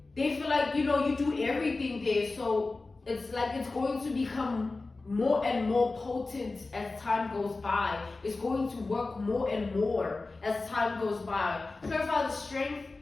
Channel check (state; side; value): quieter; right; 3.5 dB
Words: they feel like, you know, you do everything there, so it's like it's going to become more and more potent as time goes by. It's going to work more and more as time goes by. Clarify the Strength.